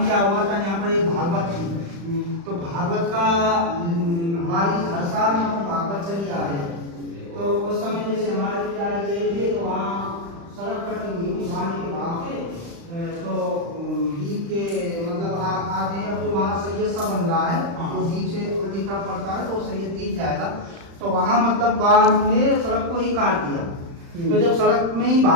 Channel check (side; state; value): left; late; 35 ms